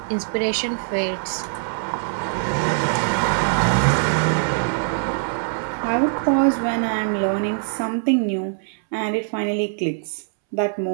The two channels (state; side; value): silent; left; 64 dB below the other